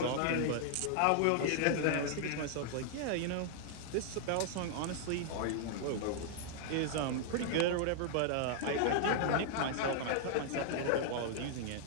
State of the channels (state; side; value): different; both; correlation -0.01